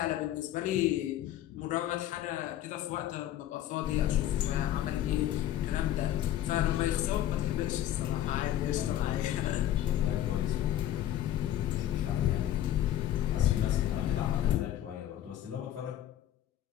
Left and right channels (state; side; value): quieter; right; 12.5 dB